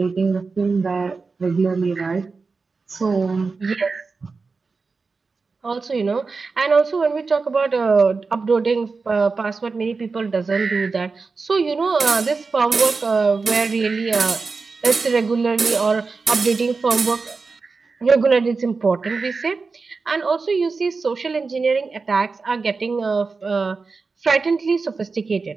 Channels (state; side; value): quieter; left; 4.4 dB